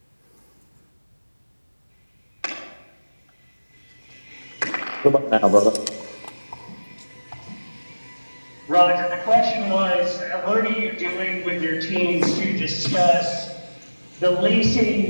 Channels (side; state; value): both; inverted; correlation -1.00